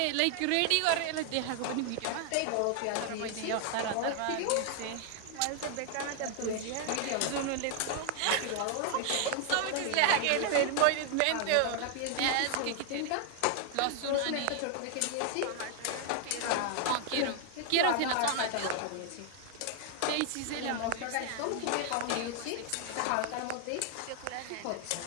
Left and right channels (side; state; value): both; different; correlation 0.00